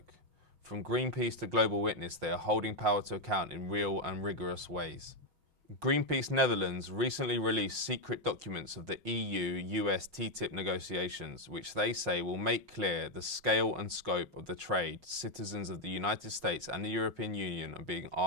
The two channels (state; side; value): late; left; 5.5 ms